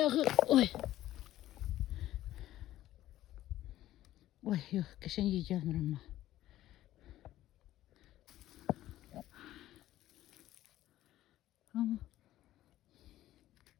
Oy. Oy yok geçen iyi gelmir ama. Ama.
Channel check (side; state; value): right; quieter; 14.2 dB